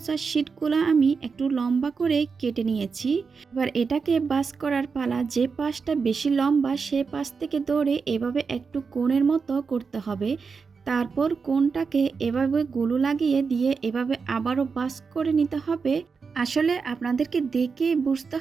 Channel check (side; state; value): left; quieter; 5.2 dB